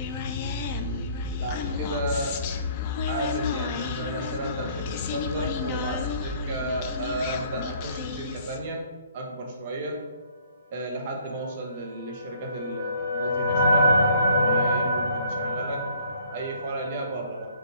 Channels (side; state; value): both; inverted; correlation -0.59